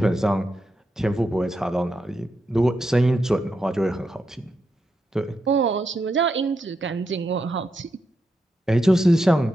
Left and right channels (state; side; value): normal; both; correlation 0.84